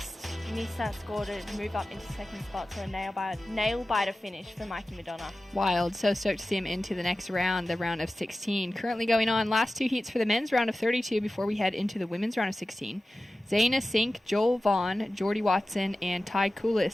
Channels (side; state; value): both; normal; correlation 0.95